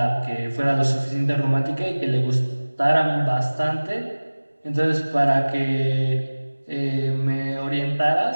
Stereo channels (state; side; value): inverted; both; correlation -1.00